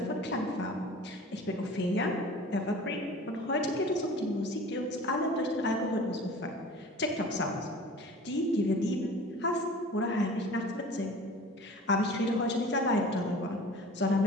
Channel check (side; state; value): both; normal; correlation 0.42